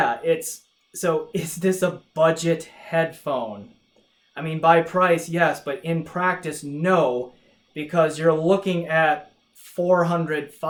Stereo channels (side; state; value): both; identical; correlation 1.00